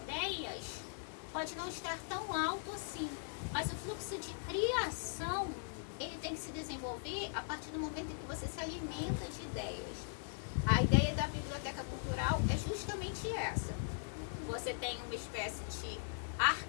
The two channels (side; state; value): right; silent; 51 dB below the other